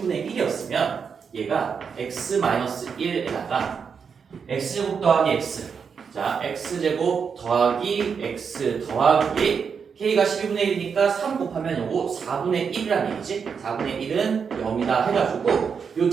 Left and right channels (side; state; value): left; quieter; 6.3 dB